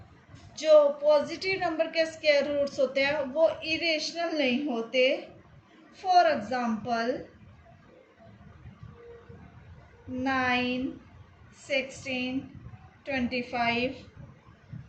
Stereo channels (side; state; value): both; identical; correlation 1.00